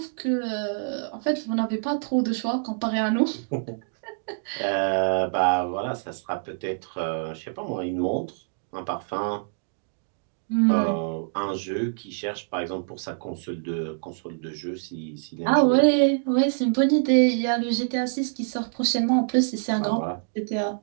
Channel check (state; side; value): silent; left; digital silence